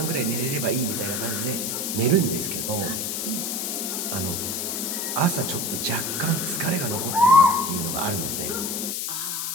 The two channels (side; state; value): left; noise; hiss, 2 dB below the sound